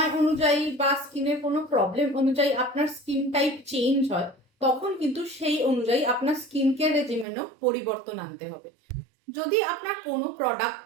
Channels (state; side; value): drops out; left; at 7.2 s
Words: অনুযায়ী বা স্কিনের কোনো প্রবলেম অনুযায়ী আপনার স্কিন টাইপ চেঞ্জ হয় তখন কিন্তু সেই অনুযায়ী আপনার স্কিন কেয়ার রেজিমেনও পরিবর্তন আনতে হবে। যদি আপনার কোনো